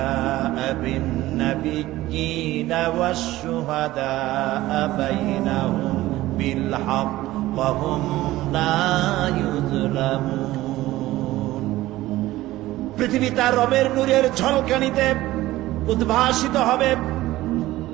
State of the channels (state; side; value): quieter; left; 16.6 dB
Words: বিন নাবিয়্যিনা ওয়াশ শুহাদাআ বাইনাহুম বিল হক ওয়া হুম লা ইউযলামুন। পৃথিবী তার রবের নূরের ঝলকানিতে উদ্ভাসিত হবে।